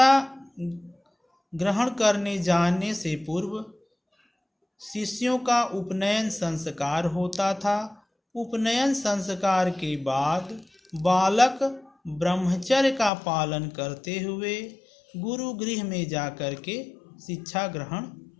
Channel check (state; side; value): drops out; right; at 13.1 s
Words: ग्रहण करने जाने से पूर्व शिष्यों का उपनयन संस्कार होता था। उपनयन संस्कार के बाद बालक ब्रह्मचर्य का पालन करते हुए गुरुगृह में जाकर के शिक्षा ग्रहण